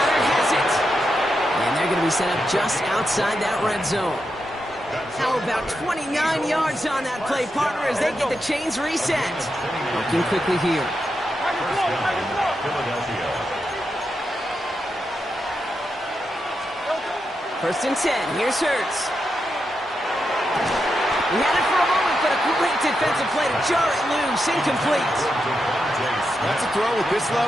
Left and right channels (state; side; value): normal; both; correlation 0.86